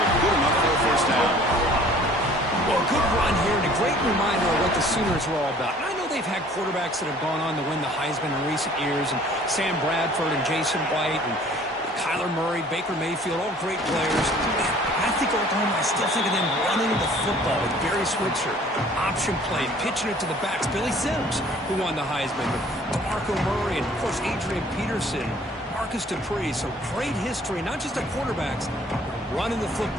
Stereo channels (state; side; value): normal; both; correlation 0.53